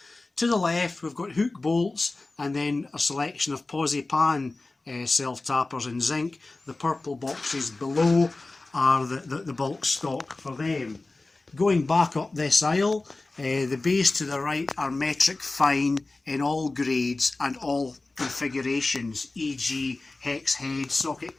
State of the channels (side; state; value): right; quieter; 3.2 dB